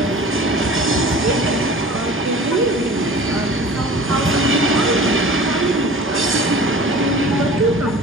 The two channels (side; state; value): both; normal; correlation 0.42